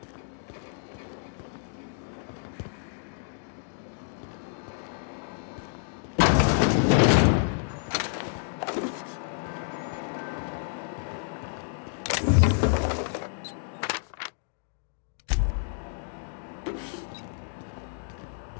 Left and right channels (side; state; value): right; silent; digital silence